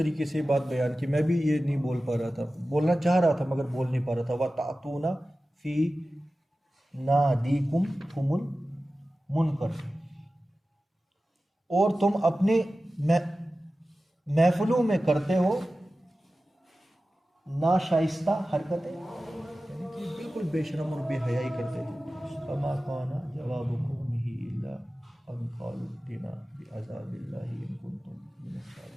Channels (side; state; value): both; normal; correlation 0.95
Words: से ये बात बयान की, मैं भी ये नहीं बोल पा रहा था, बोलना चाह रहा था मगर बोल नहीं पा रहा था। व तातूना फी नादीकुम तुमुल मुनकर, और तुम अपने महफिलों में करते हो नाशाइस्ता हरकतें, यानी कि बिल्कुल बेशरम और बेहयाई करते थे। फमा काना जवाबुकुम ही इल्ला अन क़ालू इत्तिना बिअज़ाबिल्लाहि इन कुंतुम मिनस